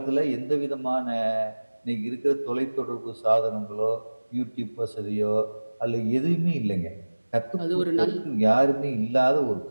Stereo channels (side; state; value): both; inverted; correlation -1.00